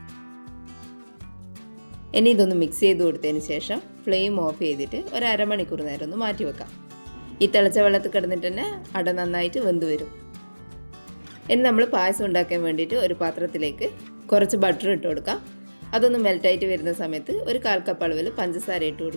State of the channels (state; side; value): inverted; both; correlation -1.00